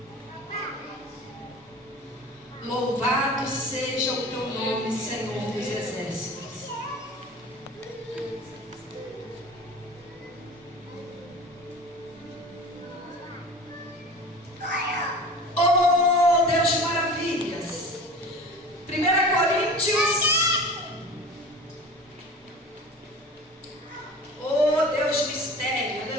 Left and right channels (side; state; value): both; normal; correlation 0.38